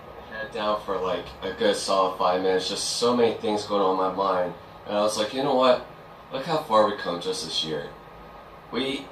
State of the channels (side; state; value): both; identical; correlation 1.00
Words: my head down for like a good solid 5 minutes. Just so many things going on in my mind. And I was like, you know what? Look how far we come just this year. We